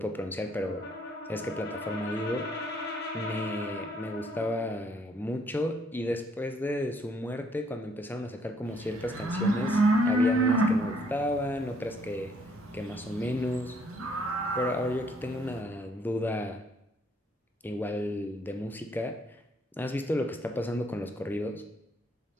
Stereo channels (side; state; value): both; normal; correlation 0.66